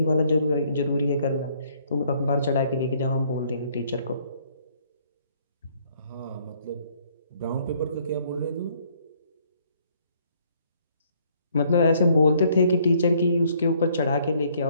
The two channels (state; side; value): inverted; both; correlation -0.65